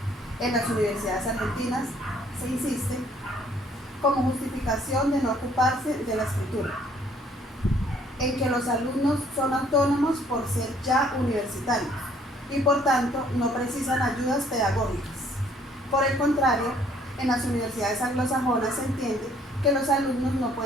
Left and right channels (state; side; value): normal; both; correlation 0.62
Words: en las universidades argentinas se insiste como justificación de no ocuparse de la escritura, en que los alumnos son autónomos por ser ya universitarios y por tanto no precisan ayudas pedagógicas. Por el contrario, en las universidades anglosajonas se entiende que los alumnos no